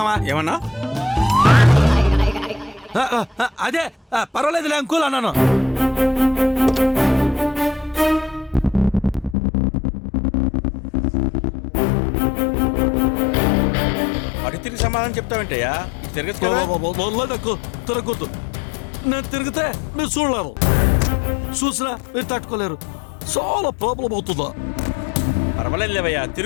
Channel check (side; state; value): right; drops out; at 9.3 s